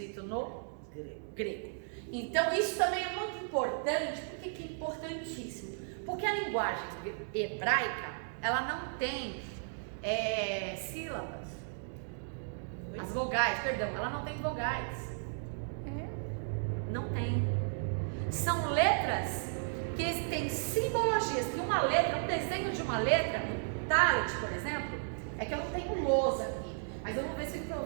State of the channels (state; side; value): silent; left; digital silence